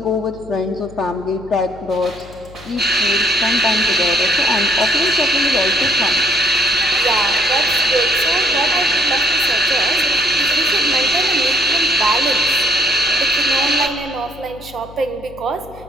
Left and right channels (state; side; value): noise; left; hum, 19 dB below the sound